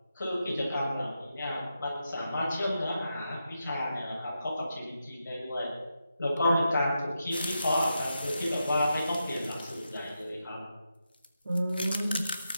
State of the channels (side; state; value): both; inverted; correlation -0.87